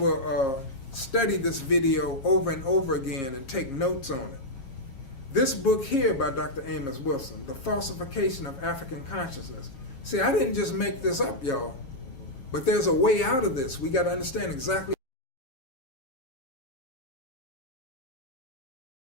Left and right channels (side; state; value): right; late; 7.4 ms